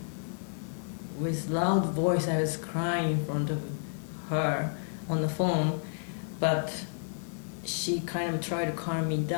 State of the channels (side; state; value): right; silent; digital silence